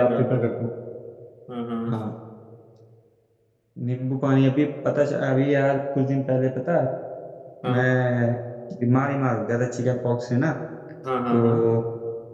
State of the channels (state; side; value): identical; both; correlation 1.00